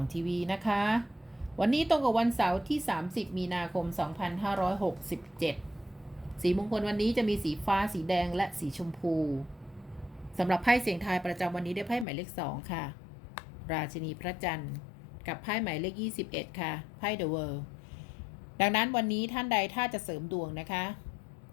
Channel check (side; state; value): right; drops out; at 12.1 s